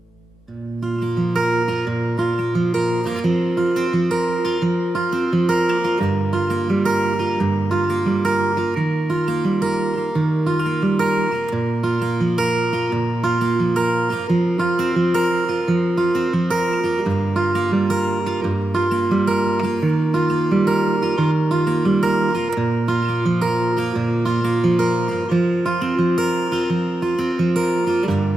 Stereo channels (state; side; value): normal; both; correlation 0.89